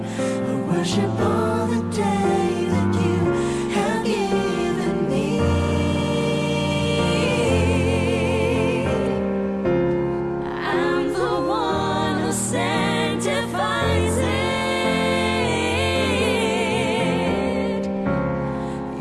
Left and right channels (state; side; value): identical; both; correlation 1.00